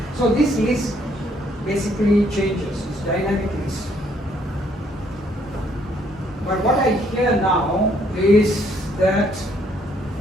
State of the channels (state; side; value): normal; both; correlation 0.67